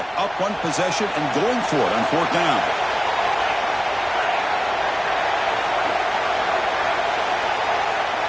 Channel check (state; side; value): identical; both; correlation 1.00